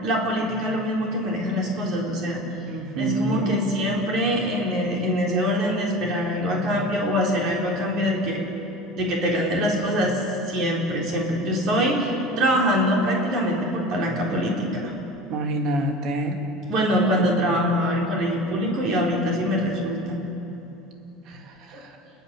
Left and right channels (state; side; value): normal; both; correlation 0.35